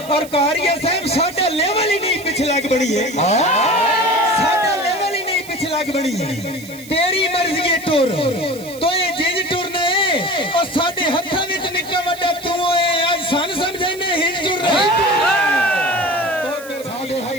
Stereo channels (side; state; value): right; noise; hiss, 18 dB below the sound